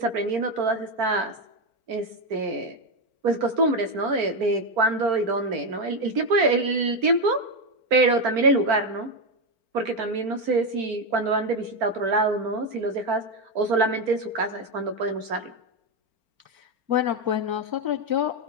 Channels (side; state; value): left; late; 4.4 ms